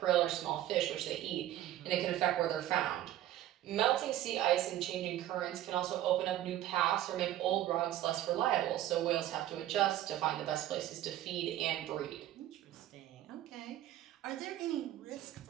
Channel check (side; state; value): left; quieter; 13.1 dB